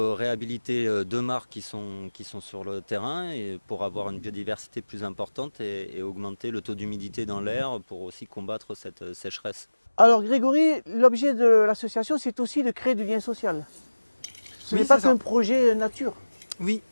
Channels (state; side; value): inverted; both; correlation -1.00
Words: réhabiliter 2 mares qui sont sur le terrain et pour avoir une biodiversité plus importante et augmenter le taux d'humidité dans l'air pour aussi combattre cette sécheresse. Alors Grégory, l'objet de l'association c'est aussi de créer du lien social. Ce n'est pas qu'un projet nature. Oui.